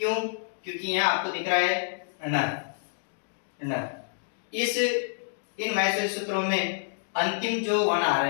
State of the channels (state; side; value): silent; right; digital silence